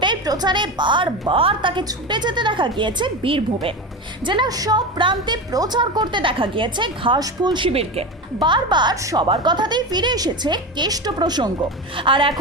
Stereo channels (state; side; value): normal; both; correlation 0.23